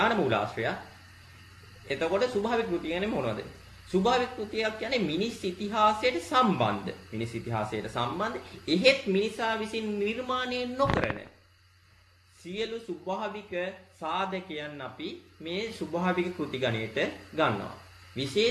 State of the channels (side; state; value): both; identical; correlation 1.00